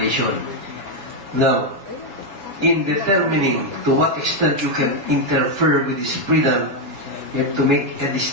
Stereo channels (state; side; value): late; left; 7.1 ms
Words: Now, in determining to what extent you can interfere with this freedom, you have to make a